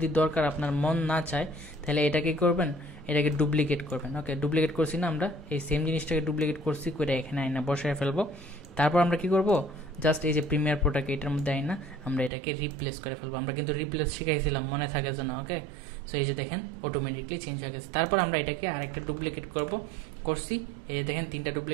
দরকার আপনার মন না চায়, তাহলে এটাকে করবেন, এটাকে ডুপ্লিকেট করবেন। ওকে, ডুপ্লিকেট করছি না, আমরা এই সেম জিনিসটাকে ডুপ্লিকেট করছি, করে এখানে আইনা বসায় ফেলবো। তারপর আমরা কি করব, জাস্ট এই যে প্রিমিয়ার প্রোটাকে এটার মধ্যে আইনা আমরা এটাকে রিপ্লেস করে ফেলবো। আমরা কিন্তু রিপ্লেস শিখাইছিলাম, মনে থাকে যেন। ওকে, সো এই যে দেখেন অটোমেটিকলি চেঞ্জ হয়ে গেছে। তারপর আমরা এটাকে আরেকটা ডুপ্লিকেট করছি, এই যে দেখেন 3টা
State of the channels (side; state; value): left; drops out; at 12.3 s